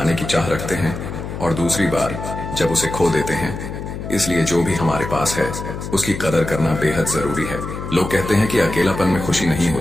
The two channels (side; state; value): left; noise; hum, 7 dB below the sound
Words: की चाह रखते हैं और दूसरी बार जब उसे खो देते हैं। इसलिए जो भी हमारे पास है उसकी कदर करना बेहद जरूरी है। लोग कहते हैं कि अकेलापन में खुशी नहीं